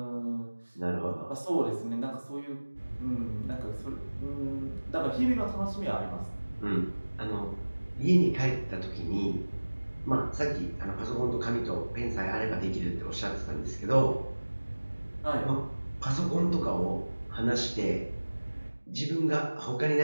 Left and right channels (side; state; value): both; inverted; correlation -1.00